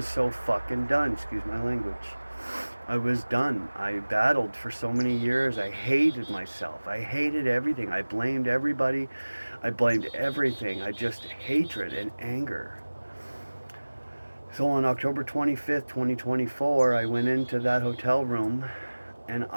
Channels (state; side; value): inverted; both; correlation -1.00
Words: so fucking done. Excuse my language. I was done. I battled for so many years. I hated myself. I hated everything. I blamed everybody. I blamed everything. I just hatred and anger. So on October 25th, 2024, I went into that hotel room and